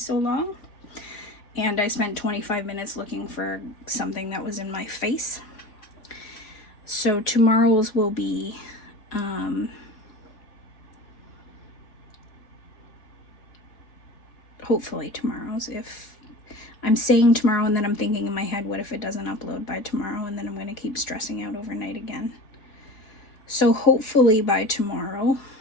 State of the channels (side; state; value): right; late; 3.4 ms